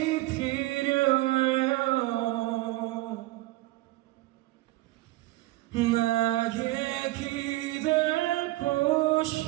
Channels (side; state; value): left; quieter; 18.7 dB